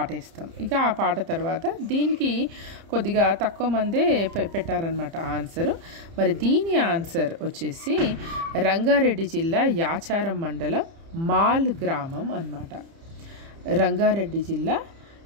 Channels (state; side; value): late; left; 30 ms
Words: వేస్తాం. ఇక ఆ పాట తర్వాత దీనికి కొద్దిగా తక్కువ మందే పెట్టారనమాట ఆన్సరు. మరి దీని ఆన్సర్ వచ్చేసి రంగారెడ్డి జిల్లా యాచారం మండలం మాల్ గ్రామం అన్నమాట. రంగారెడ్డి జిల్లా